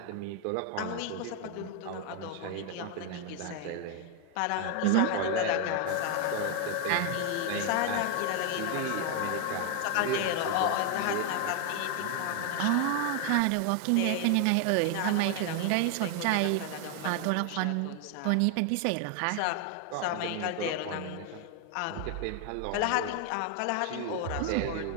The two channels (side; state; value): both; different; correlation 0.01